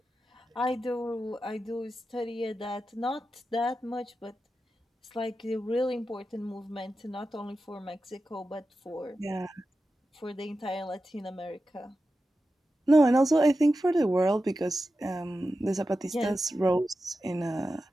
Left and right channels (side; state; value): both; normal; correlation 0.92